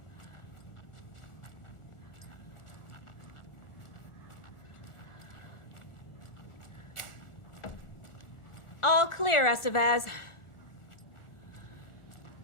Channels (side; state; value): right; late; 1.4 ms